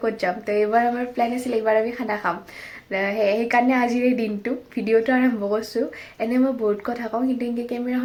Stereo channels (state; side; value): identical; both; correlation 1.00